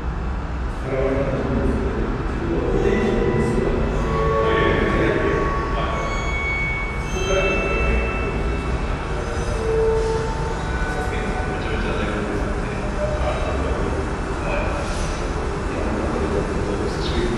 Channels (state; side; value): identical; both; correlation 1.00